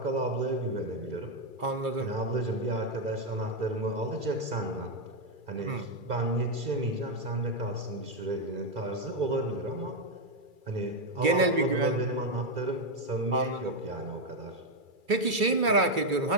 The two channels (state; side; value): late; left; 2.3 ms